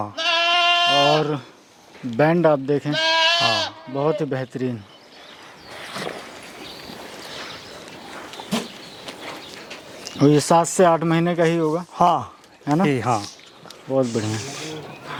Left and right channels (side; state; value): both; identical; correlation 1.00